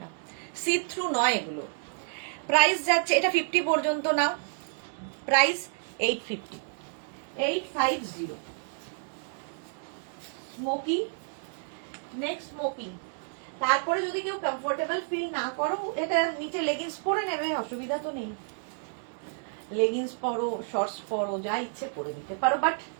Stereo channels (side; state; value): left; silent; digital silence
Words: না, সি থ্রু নয় এগুলো। প্রাইস যাচ্ছে, এটা 50 পর্যন্ত নাও, প্রাইস 850, 850 স্মোকি। নেক্সট স্মোকি, তারপরে যদি কেউ কমফোর্টেবল ফিল না করো, এটা নিচে লেগিংস পরে নেবে, অসুবিধা তো নেই, লেগিংস পরো, শর্টস পরো, যা ইচ্ছে পরে নিতে পারো, বাট